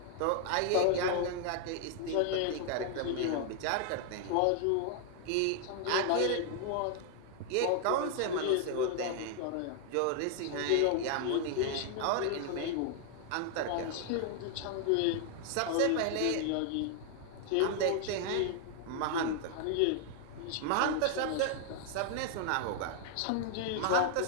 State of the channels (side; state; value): both; different; correlation 0.00